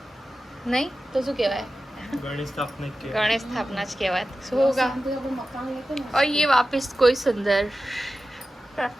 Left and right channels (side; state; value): both; normal; correlation 0.94